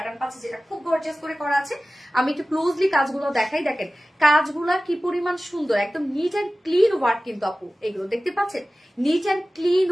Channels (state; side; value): normal; both; correlation 0.96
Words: পাচ্ছি যেটা খুব গর্জিয়াস করে করা আছে। আমি একটু ক্লোজলি কাজগুলো দেখাই, দেখেন কাজগুলা কি পরিমাণ সুন্দর, একদম নিট অ্যান্ড ক্লিন ওয়ার্ক কিন্তু আপু, এগুলো দেখতে পাচ্ছেন, নিট অ্যান্ড ক্লিন